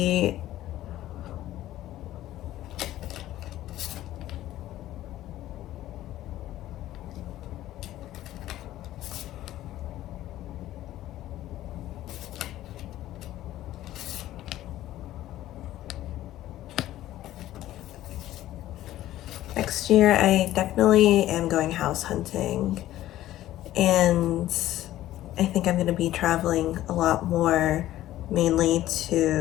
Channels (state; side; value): quieter; right; 14.2 dB